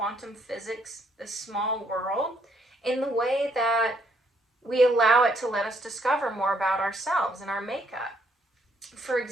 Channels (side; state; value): both; normal; correlation 0.70